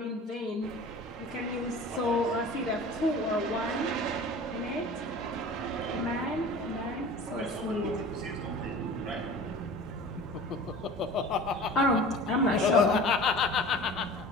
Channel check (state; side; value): normal; both; correlation 0.40